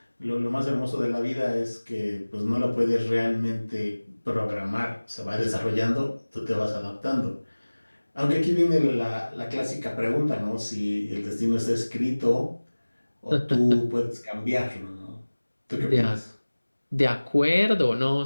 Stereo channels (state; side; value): inverted; both; correlation -1.00